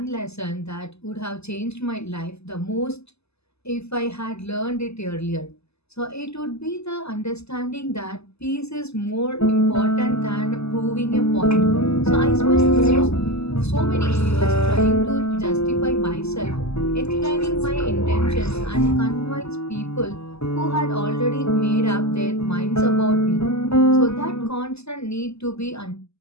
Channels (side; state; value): right; late; 0.79 ms